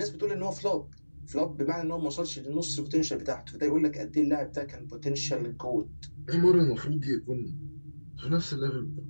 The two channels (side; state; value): both; inverted; correlation -1.00